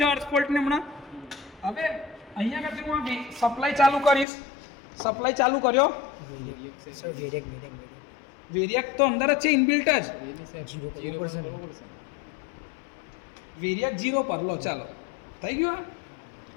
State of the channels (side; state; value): right; drops out; at 4.2 s